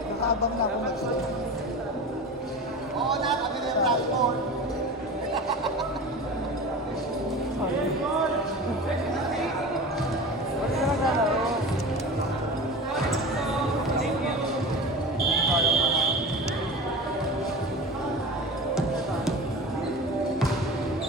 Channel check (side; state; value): both; normal; correlation 0.32